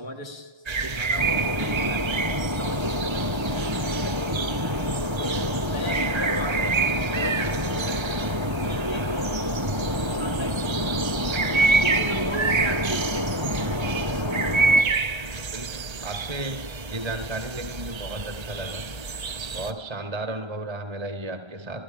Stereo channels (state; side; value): late; left; 1.3 ms